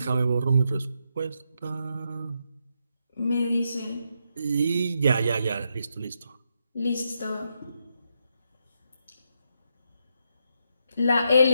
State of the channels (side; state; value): both; inverted; correlation -0.81